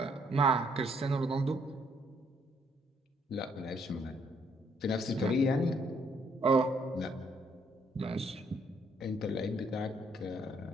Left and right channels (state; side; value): normal; both; correlation 0.69